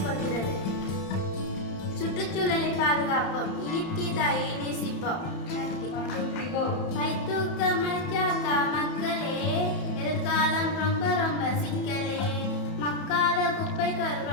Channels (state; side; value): late; right; 31 ms